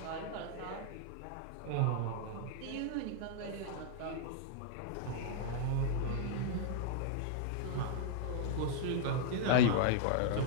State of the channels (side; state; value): both; different; correlation -0.01